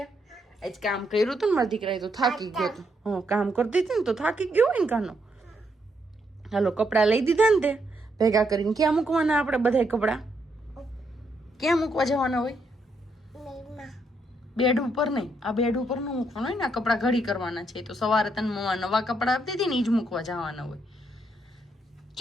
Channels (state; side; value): normal; both; correlation 0.76